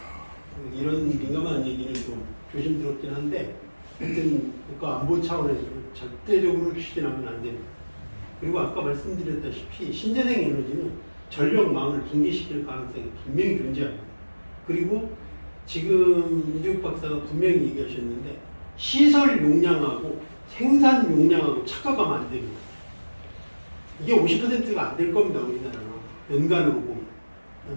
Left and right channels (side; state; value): both; inverted; correlation -1.00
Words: 이런 민감한 얘기는 좀 조심스럽긴 한데 하여튼 국가안보 차원에서 절대적으로 추진하면 안 됩니다. 그리고 아까 말씀드렸다시피 신재생 에너지는 전력망을 붕괴시킬 가능성이 분명히 존재합니다. 그리고 지금 이재욱 박사가 분명히 얘기하셨는데 시설 용량하고 생산 용량하고 착각하면 안 됩니다. 이게 50%가 안 될 겁니다. 우리나라는 연간으로 보면.